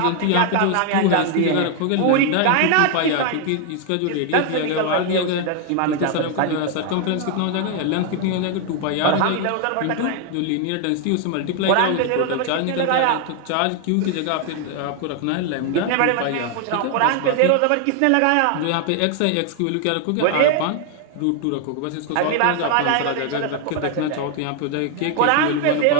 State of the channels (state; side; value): different; both; correlation 0.00